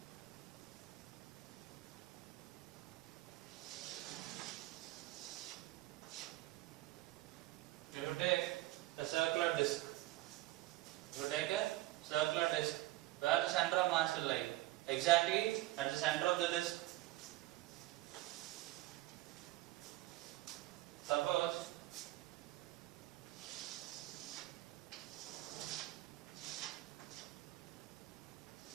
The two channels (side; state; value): left; quieter; 17.5 dB